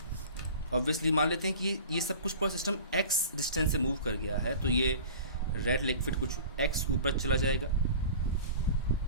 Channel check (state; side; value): inverted; both; correlation -0.39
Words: ऑब्वियसली मान लेते हैं कि ये सब कुछ पूरा सिस्टम x डिस्टेंस से मूव कर गया है, तो ये रेड लिक्विड कुछ x ऊपर चला जाएगा,